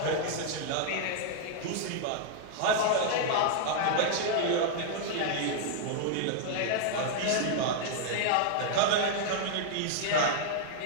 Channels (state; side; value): different; both; correlation -0.01